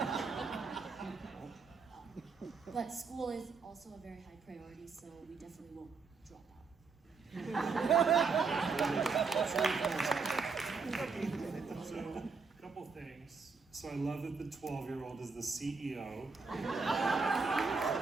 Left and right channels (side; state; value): left; quieter; 4.8 dB